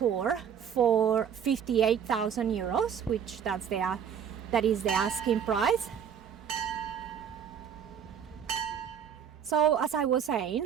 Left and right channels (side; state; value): left; quieter; 8.1 dB